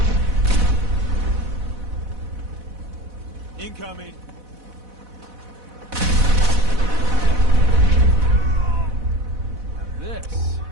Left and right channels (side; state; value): left; late; 4.1 ms